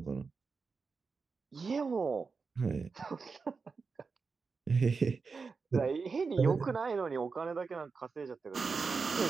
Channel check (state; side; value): quieter; left; 4.8 dB